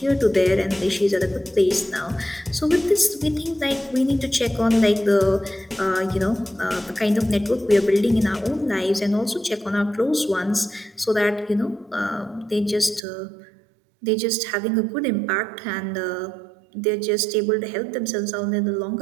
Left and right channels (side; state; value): left; drops out; at 13.0 s